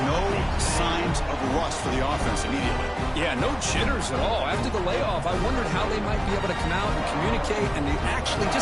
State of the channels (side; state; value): both; identical; correlation 1.00